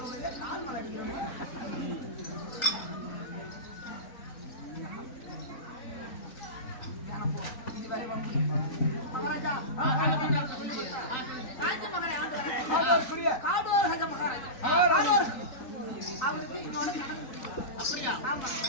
கால் மலை அடிக்கிறோம். மகாராஜா ராஜ்ய மகாராஜா காடோர் ராஜா மகாராஜா அவருக்கு இன்னொன்னு கணக்கு அப்படியா? ஆமா,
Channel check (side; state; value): right; late; 3.9 ms